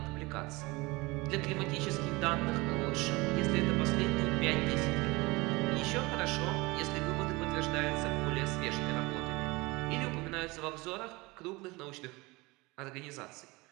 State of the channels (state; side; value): quieter; left; 23.5 dB